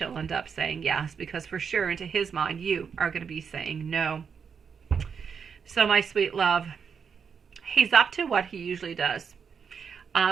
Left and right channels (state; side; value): quieter; left; 6.5 dB